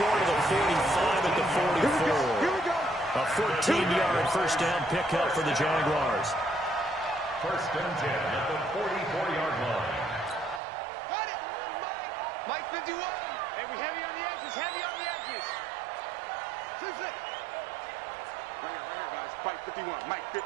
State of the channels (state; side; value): drops out; left; at 10.6 s